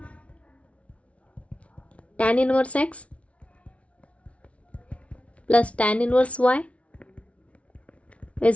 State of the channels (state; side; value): late; right; 0.063 ms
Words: tan inverse x plus tan inverse y